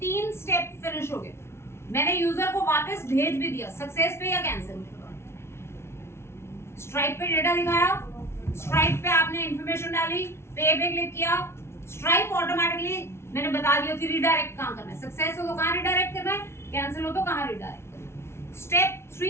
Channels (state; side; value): late; right; 0.12 ms